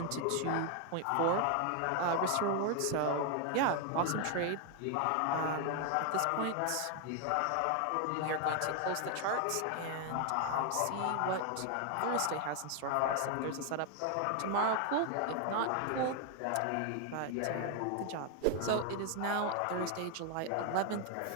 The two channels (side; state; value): both; different; correlation 0.00